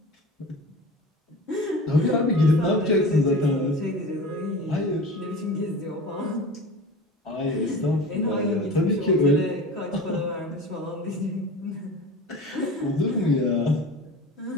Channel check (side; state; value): both; normal; correlation 0.35